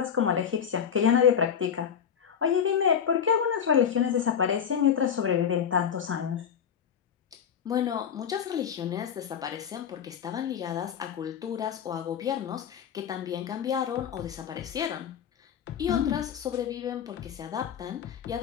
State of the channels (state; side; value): quieter; right; 8.1 dB